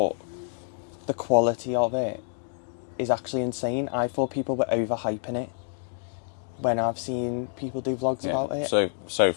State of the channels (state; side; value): silent; right; 60 dB below the other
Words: the quality of it is actually insane. I thought people were overhyping it when I've seen people do vlogs about it. So